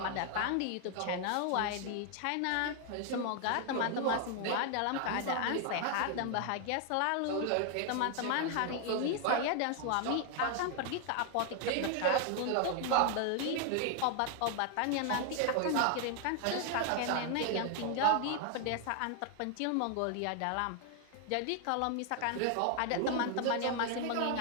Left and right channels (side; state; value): both; different; correlation 0.00